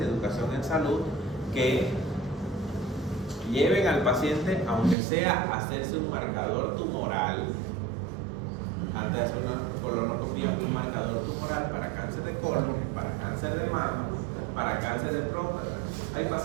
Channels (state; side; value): drops out; left; at 5.0 s